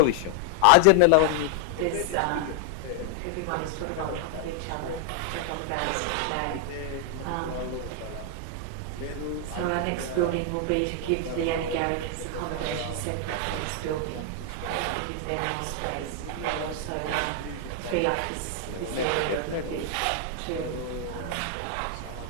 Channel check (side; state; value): both; different; correlation 0.00